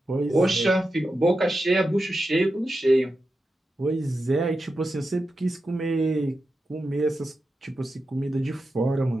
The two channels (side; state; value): both; normal; correlation 0.90